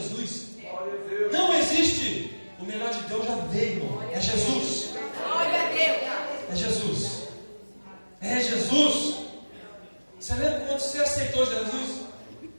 Deus. Não existe. O melhor de Deus já veio, irmão. É Jesus. Glória a Deus. É Jesus. É Jesus. Você lembra quando você aceitou Jesus?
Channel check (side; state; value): both; inverted; correlation -1.00